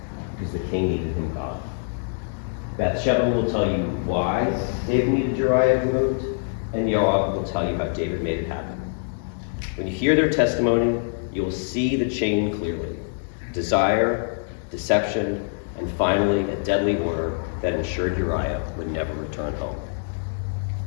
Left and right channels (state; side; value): silent; right; digital silence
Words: because the king needed him gone. Bathsheba will tell you why David needed Uriah removed, and Joab will tell you how David made it happen. When you hear their testimony, you will see the chain clearly. Desire, deception, and finally a deadly order that ensured Uriah would never return home.